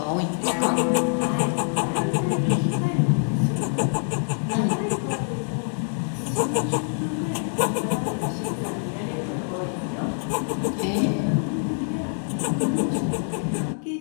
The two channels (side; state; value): right; silent; 62 dB below the other